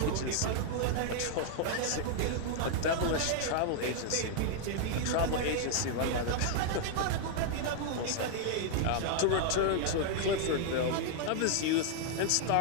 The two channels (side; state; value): both; different; correlation 0.00